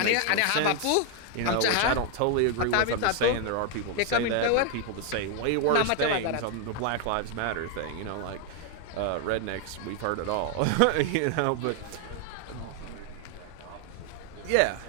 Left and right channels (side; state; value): both; different; correlation 0.00